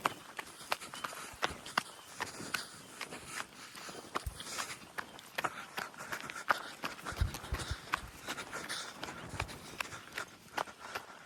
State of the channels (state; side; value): identical; both; correlation 1.00